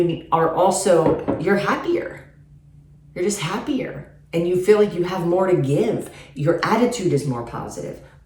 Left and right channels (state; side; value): identical; both; correlation 1.00